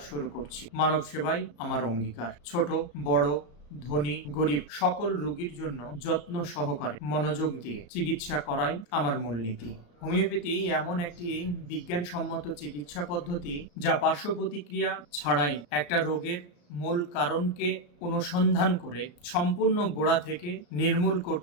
শুরু করছি। মানব সেবাই আমার অঙ্গীকার। ছোট বড় ধনী গরিব সকল রোগীর জন্য যত্ন সহকারে মনোযোগ দিয়ে চিকিৎসা করাই আমার মূলনীতি। হোমিওপ্যাথি এমন একটি বিজ্ঞানসম্মত চিকিৎসা পদ্ধতি যা পার্শ্ব প্রতিক্রিয়া ছাড়াই একটা রোগের মূল কারণকে অনুসন্ধান করে সম্পূর্ণ গোড়া থেকে নির্মূল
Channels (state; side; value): late; right; 34 ms